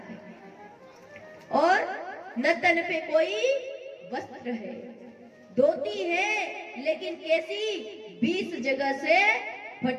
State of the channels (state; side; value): identical; both; correlation 1.00